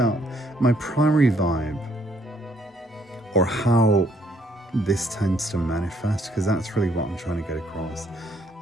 my primary vibe, or how this tends to manifest, because that's really what I'm trying to get across.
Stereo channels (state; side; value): normal; both; correlation 0.67